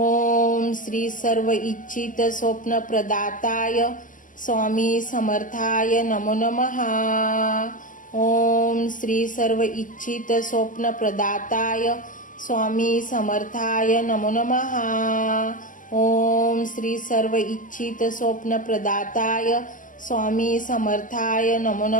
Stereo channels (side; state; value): right; late; 0.38 ms